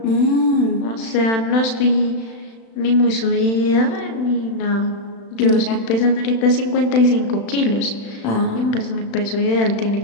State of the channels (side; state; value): right; late; 36 ms